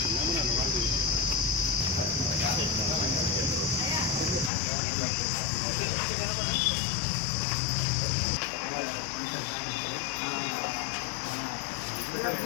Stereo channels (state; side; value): drops out; right; at 4.5 s